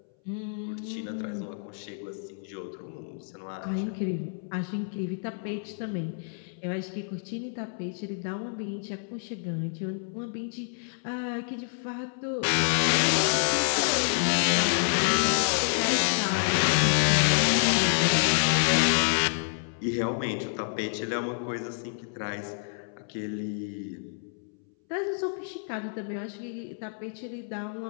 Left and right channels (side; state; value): right; silent; 59 dB below the other